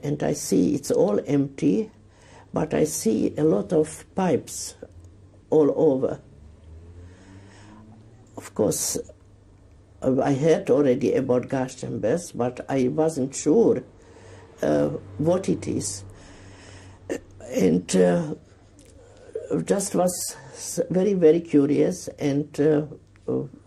and I see it's all empty, but I see a lot of pipes all over. Of course, I heard already about gas chambers, but I wasn't sure what it is. And just was very, very curious, and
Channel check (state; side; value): identical; both; correlation 1.00